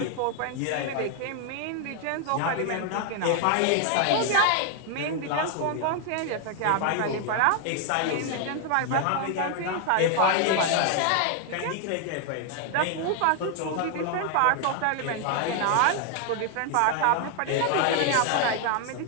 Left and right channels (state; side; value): different; both; correlation 0.00